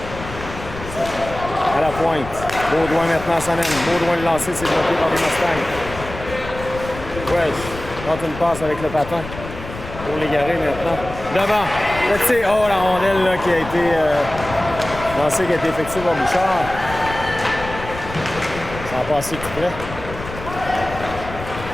À la pointe. Baudouin maintenant s'amène. Baudouin le lancer, c'est bloqué par les Mustangs. Welsh tente une passe avec le patin. Pour Légaré maintenant. Devant. Le tir. Oh, la rondelle là, qui a été lancée, qui a été effectuée par Bouchard. Ça va passer tout près.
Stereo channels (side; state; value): left; noise; rumble, 11 dB below the sound